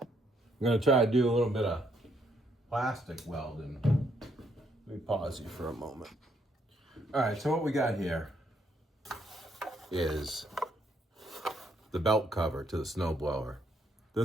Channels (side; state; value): both; normal; correlation 0.72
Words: I'm gonna try to do a little bit of plastic welding. Let me pause you for a moment. All right, so what we got here is the belt cover to the snowblower.